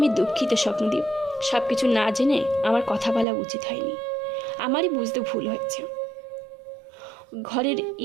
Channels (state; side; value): drops out; left; at 3.2 s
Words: দুঃখিত স্বপ্নদীপ। সব কিছু না জেনে আমার কথা বলা উচিত হয়নি, আমারই বুঝতে ভুল হয়েছে। ঘরের